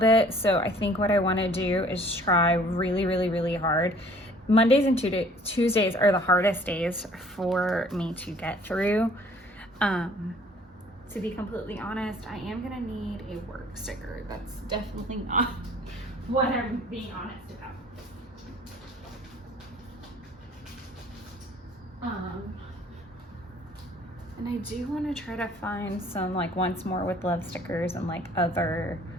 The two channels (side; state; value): both; normal; correlation 0.54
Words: So I think what I wanna do is try really, really, really hard. Mondays and Tuesdays are the hardest days for me to get through. To be completely honest, I am gonna need a work sticker. That's definitely not what I'm being honest about. And I do want to try to find some like Once More with Love stickers and like other